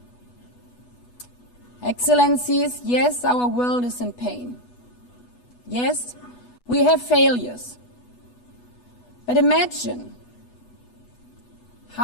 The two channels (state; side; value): late; right; 8.2 ms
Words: Excellencies, yes, our world is in pain. Yes, we have failures. But imagine